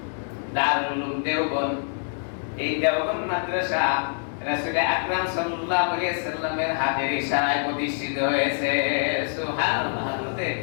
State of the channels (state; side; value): silent; right; digital silence